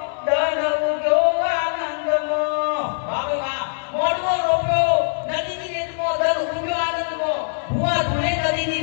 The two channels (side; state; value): right; silent; 64 dB below the other